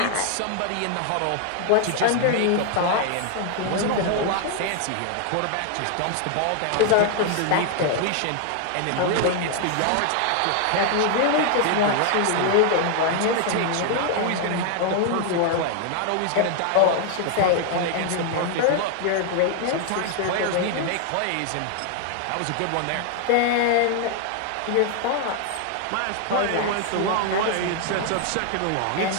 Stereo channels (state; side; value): different; both; correlation 0.00